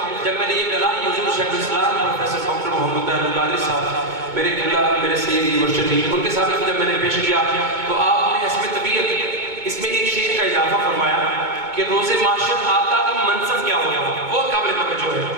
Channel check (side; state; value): left; late; 2.2 ms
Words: جب میں نے یہ کلام حضور شیخ الاسلام پروفیسر ڈاکٹر محمد طاہر القادری صاحب میرے قبلہ میرے سیدی مرشدی ان کے سامنے جب میں نے پیش کیا تو آپ نے حسب طبیعت اس میں ایک شعر کا اضافہ فرمایا کہ روز معاشر آقا کا منصب کیا ہوگا، وہ قابل توجہ ہے.